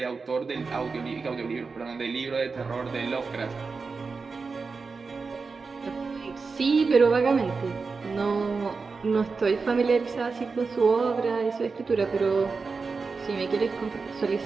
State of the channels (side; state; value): left; quieter; 4.6 dB